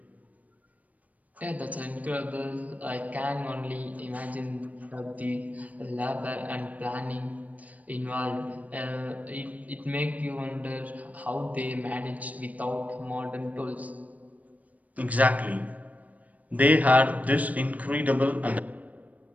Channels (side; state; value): left; late; 0.073 ms